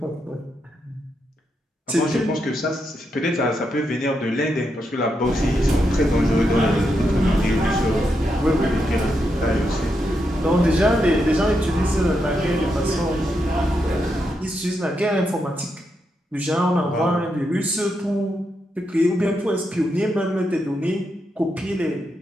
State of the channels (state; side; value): normal; both; correlation 0.83